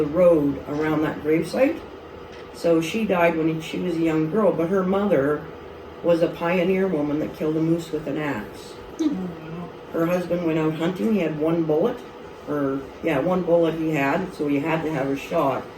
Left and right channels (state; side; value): identical; both; correlation 1.00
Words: road around that gravesite. So she died when she was a young girl, but her mother was a pioneer woman that killed a moose with an axe. Oh, wow. Her husband went out hunting. He had one bullet, one bullet he had, so he had to have a shot.